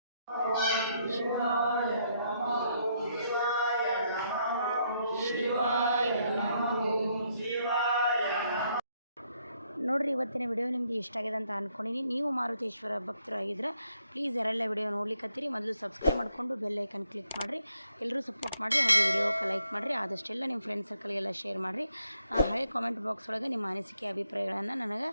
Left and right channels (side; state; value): both; inverted; correlation -0.74